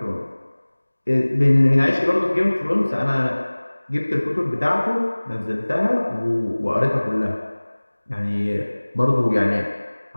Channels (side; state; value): both; inverted; correlation -1.00